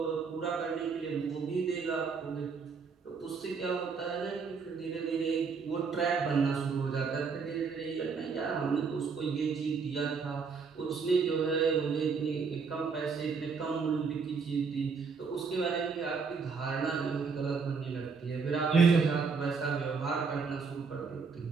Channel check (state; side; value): quieter; left; 5.2 dB